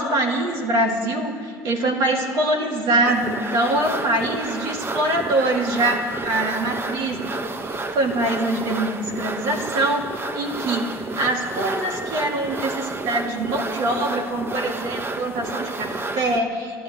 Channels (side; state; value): both; normal; correlation 0.35